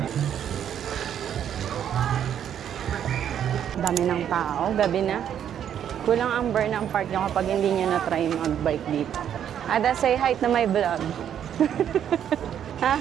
Dami ng tao, gabi na. Kulang ang Burnham Park nyo kapag hindi nyo na-try mag-bike dito. Ada, say hi to my vlog. Ha?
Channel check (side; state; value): left; quieter; 9.5 dB